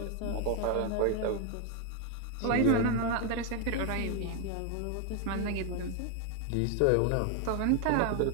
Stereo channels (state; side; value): different; both; correlation 0.01